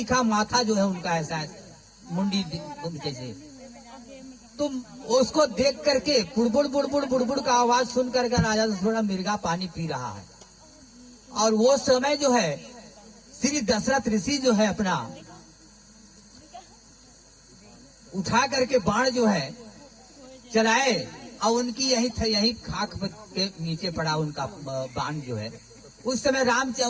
माथा जो है उनका ऐसा मुंडी जैसे। तुम उसको देख करके बुड़बुड़ बुड़बुड़ बुड़बुड़ का आवाज सुन करके राजा थोड़ा मिर्गा पानी पी रहा है। और वो समय जो है श्री दशरथ ऋषि जो है अपना उठा करके बाण जो है चलाए और उनकी यही खाक के नीचे पड़ा उनका बाण जो है। उस समय राम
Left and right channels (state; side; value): identical; both; correlation 1.00